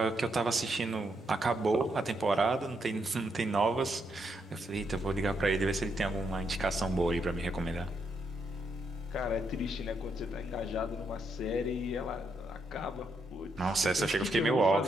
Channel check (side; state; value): both; normal; correlation 0.78